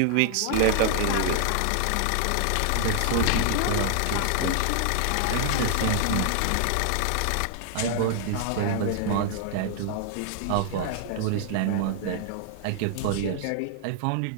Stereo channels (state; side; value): different; both; correlation 0.00